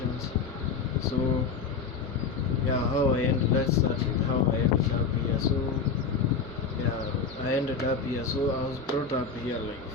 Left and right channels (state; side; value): quieter; right; 5.2 dB